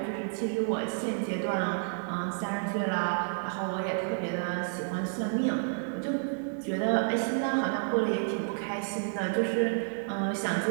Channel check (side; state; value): left; silent; digital silence